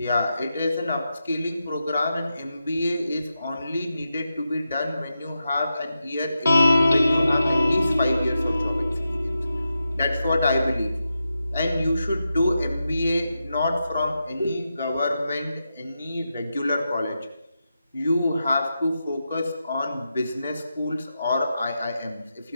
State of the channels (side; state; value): both; inverted; correlation -0.89